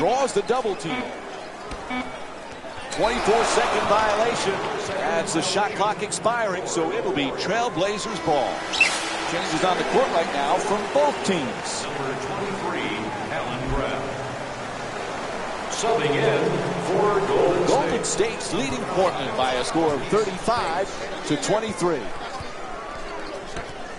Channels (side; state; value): both; identical; correlation 1.00